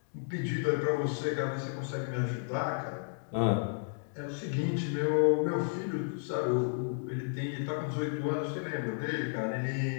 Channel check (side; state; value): right; silent; digital silence